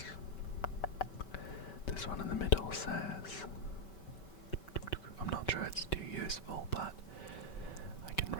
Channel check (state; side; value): late; right; 5.2 ms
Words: This one in the middle says, I'm not sure it's too useful, but I can